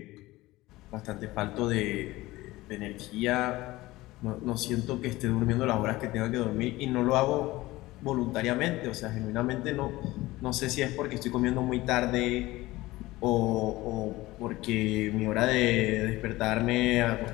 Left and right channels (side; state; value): right; quieter; 18.7 dB